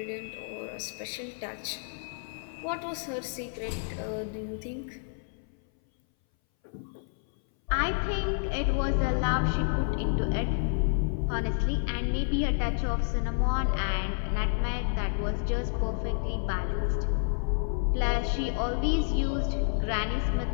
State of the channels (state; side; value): silent; right; 58 dB below the other